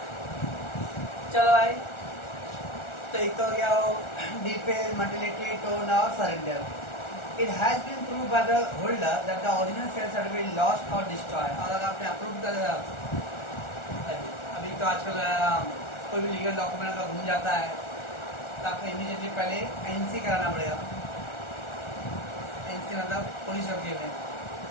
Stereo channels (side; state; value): right; late; 1.4 ms